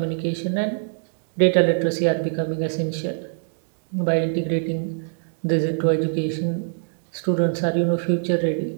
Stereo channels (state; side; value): silent; left; digital silence